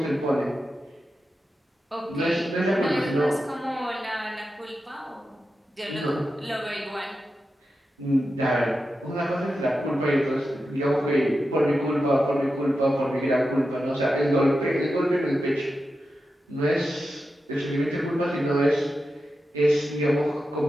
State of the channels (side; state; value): both; normal; correlation 0.90